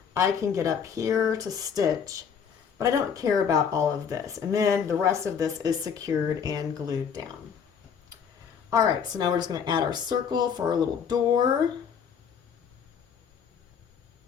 I can get up here to stitch, but I don't care about all of this. And then the rest of this is secured and glued down. All right, so now we're just going to add our circle for our little door.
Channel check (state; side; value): quieter; right; 7.1 dB